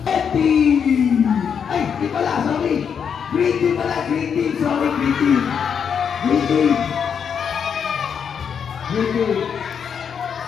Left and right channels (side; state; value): right; quieter; 7.2 dB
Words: Red team. Ay, di pala, sorry. Green team pala, green team. Sorry, green team. Green team.